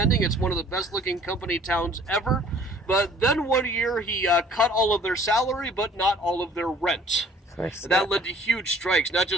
It's one of the best looking company towns ever. But then one year he cut all of their salary, but not all of their rent. That led to huge strikes, not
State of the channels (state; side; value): normal; both; correlation 0.54